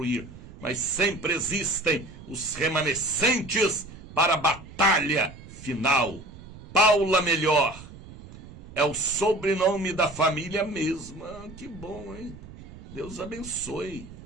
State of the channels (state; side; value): noise; right; rumble, 17 dB below the sound